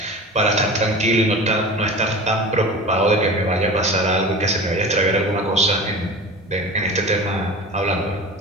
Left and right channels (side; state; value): both; normal; correlation 0.35